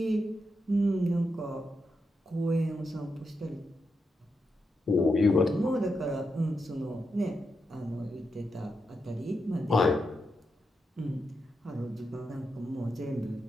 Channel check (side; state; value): both; normal; correlation 0.85